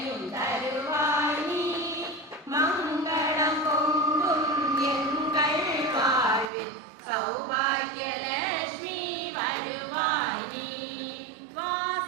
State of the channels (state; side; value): drops out; left; at 6.5 s